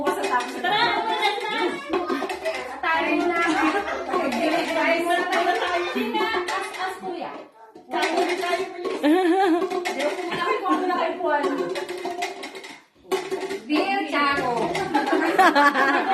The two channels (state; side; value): identical; both; correlation 1.00